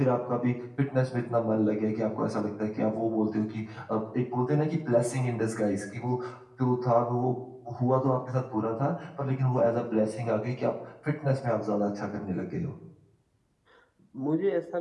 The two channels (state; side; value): identical; both; correlation 1.00